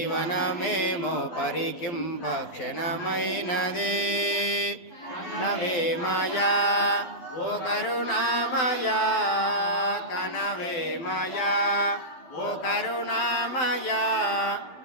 పరికింప క్షణమైనది నవే మాయా ఓ కరుణామయా కనవే మాయా ఓ కరుణామయా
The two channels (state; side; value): late; right; 12 ms